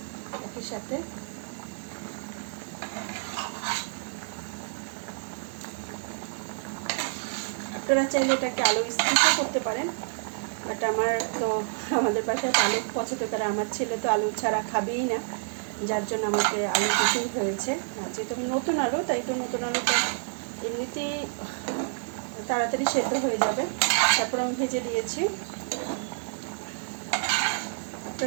একই সাথে। আপনারা চাইলে এটাকে আলু স্কিপও করতে পারেন, বাট আমাদের বাসায় আলু পছন্দ করে। আমার ছেলে তো আলু ছাড়া খাবেই না, যার জন্য আমাকে আলু দিতেই হয়েছে। আর যেহেতু নতুন আলু, তাই তো নতুন আলুটা এমনিতেই তাড়াতাড়ি সেদ্ধ হয়ে যাবে। তারপর আমি ভেজে দিয়েছি।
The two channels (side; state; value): left; silent; 59 dB below the other